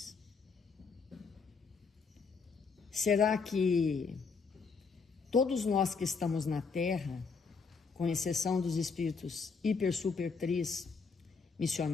Será que todos nós que estamos na Terra, com exceção dos espíritos hiper, super, tris,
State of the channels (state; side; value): quieter; right; 5.0 dB